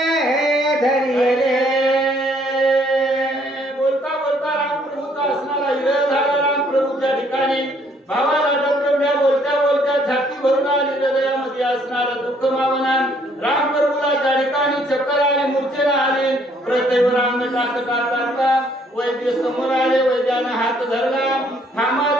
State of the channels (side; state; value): both; normal; correlation 0.65